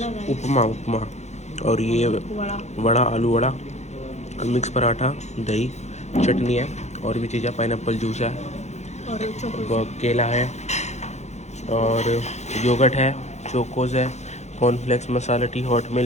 उपमा उपमा और ये वड़ा, आलू वड़ा, मिक्स पराठा, दही, चटनी है और भी चीज़ें, पाइनएप्पल जूस है और केला है और योगर्ट है, चोकोज है, कॉर्नफ्लेक्स, मसाला टी, हॉट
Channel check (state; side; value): late; right; 0.33 ms